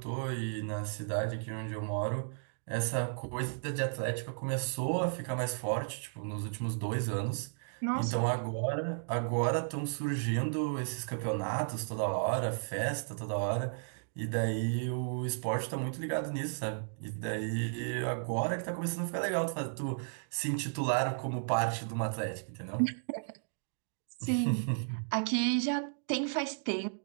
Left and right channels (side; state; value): left; silent; digital silence